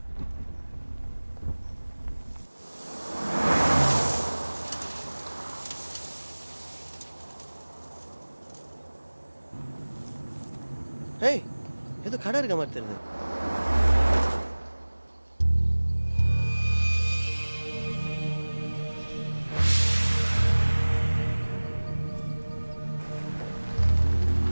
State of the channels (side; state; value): both; inverted; correlation -1.00